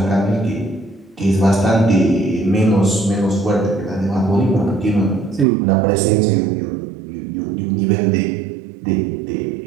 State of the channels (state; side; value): drops out; left; at 5.5 s